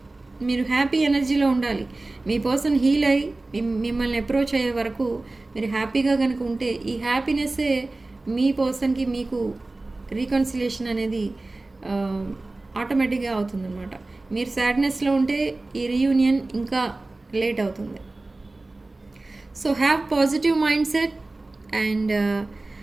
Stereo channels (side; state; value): left; quieter; 3.1 dB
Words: మీరు హ్యాపీ ఎనర్జీలో ఉండాలి. మీ పర్సన్ హీల్ అయ్యి మిమ్మల్ని అప్రోచ్ అయ్యే వరకు మీరు హ్యాపీగా కనుక ఉంటే ఈ హ్యాపీనెస్సే మీ పర్సన్కి మీకు రీకన్సిలేషన్ అనేది ఆటోమేటిక్గా అవుతుందన్నమాట. మీరు సాడ్నెస్లో ఉంటే ఈ రీయూనియన్ ఇంకా లేట్ అవుతుంది. So have positive mindset and